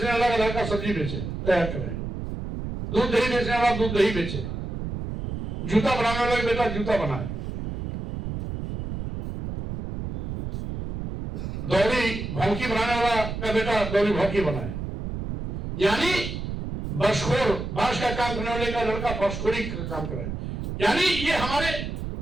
वाला का लड़का सब्जी बेचे तैयार करे, दूध दही बेचने वाला दूध दही बेचे, जूता बनाने वाला का बेटा जूता बनाए, दौरी भौंकी बनाने वाला का बेटा दौरी भौंकी बनाए। यानी बसखोर, बांस का काम करने वाले का लड़का बसखोरी का काम करे। यानी ये हमारे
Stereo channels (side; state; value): right; noise; rumble, 6 dB below the sound